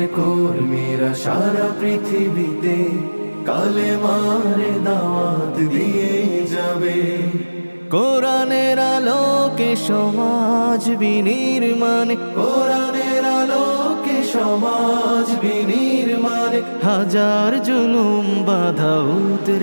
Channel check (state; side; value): inverted; both; correlation -1.00